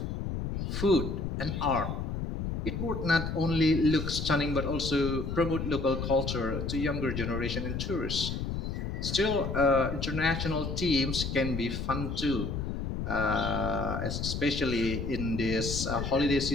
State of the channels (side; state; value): left; noise; rumble, 3 dB below the sound